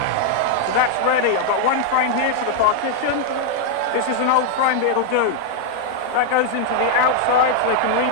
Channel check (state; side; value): different; both; correlation -0.01